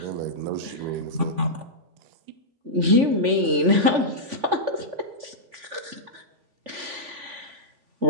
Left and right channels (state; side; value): late; left; 3.5 ms